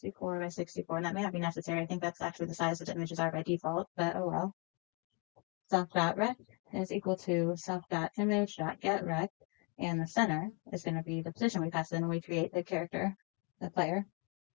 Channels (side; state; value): right; quieter; 29.8 dB